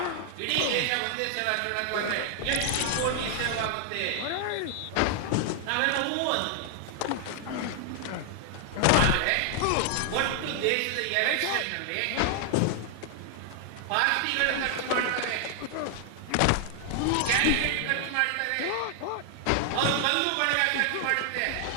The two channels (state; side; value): different; both; correlation 0.00